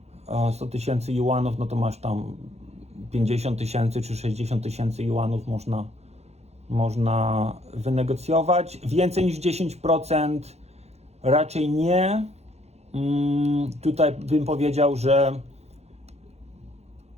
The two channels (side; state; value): left; late; 0.31 ms